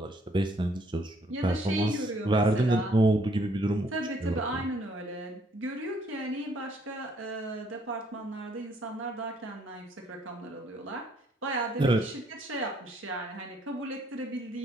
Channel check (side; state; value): both; normal; correlation 0.67